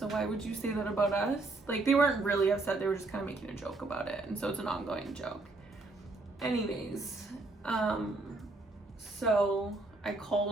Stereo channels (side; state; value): left; quieter; 3.2 dB